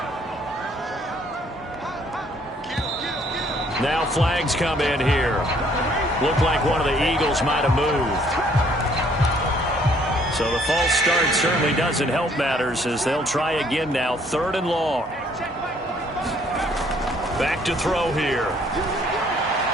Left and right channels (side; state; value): both; normal; correlation 0.63